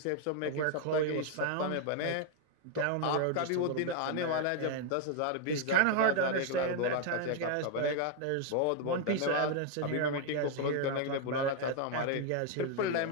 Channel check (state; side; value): different; both; correlation 0.00